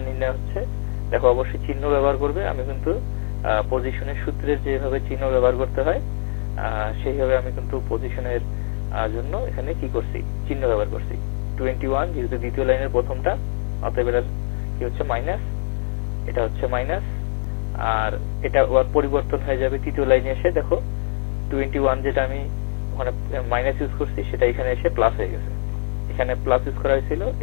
নির্ণয় হচ্ছে। দেখো অবশ্যই চিহ্ন ব্যবহার করবে, আমি কিন্তু পজিশনের সূত্রের যেভাবে চিহ্ন ব্যবহার করতে হয় সেইভাবে আমি কিন্তু পজিশনের জন্য এখানে কি করছি, চিহ্ন ব্যবহার করছি। 21 যেহেতু দ্বিতীয় লাইনের প্রথমটা, অতএব এটা কি হচ্ছে এটা হচ্ছে মাইনাস, আর এটা ওর পরিবর্তন হয়ে যাবে তৃতীয় লাইনে এসে। দেখো 21 যেটা আমি ওখানে মাইনাস ইউজ করছি সেটা এখানে এসে প্লাস হয়ে গেছে। এখানে প্লাস ইউজ করা হয়েছিল,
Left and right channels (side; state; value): right; silent; digital silence